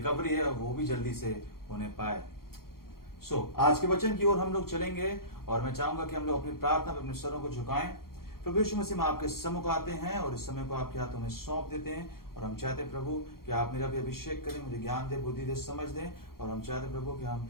है वो भी जल्दी से होने पाए। आज के वचन की ओर हम लोग चलेंगे और मैं चाहूंगा कि हम लोग अपनी प्रार्थना में अपने सरों को झुकाएं। प्रभु यीशु मसीह में आपके सम्मुख आते हैं और इस समय को आपके हाथों में सौंप देते हैं, और हम चाहते हैं प्रभु कि आप मेरा भी अभिषेक करें, मुझे ज्ञान दे, बुद्धि दे, समझ दें, और हम चाहते हैं प्रभु कि हम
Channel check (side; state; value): right; late; 0.93 ms